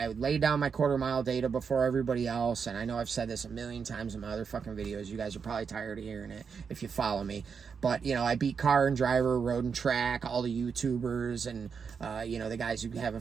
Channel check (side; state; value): left; quieter; 6.1 dB